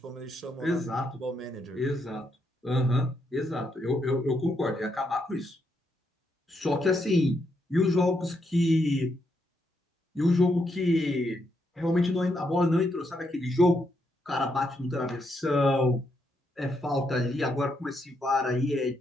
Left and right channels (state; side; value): normal; both; correlation 0.78